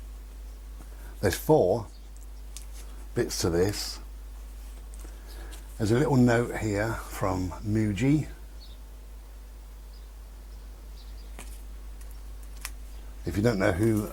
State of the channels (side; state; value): both; identical; correlation 1.00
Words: There's 4 bits to this. There's a little note here from Muji. If you don't know who